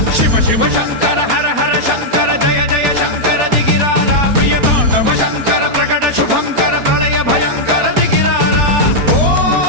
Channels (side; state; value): left; late; 4.2 ms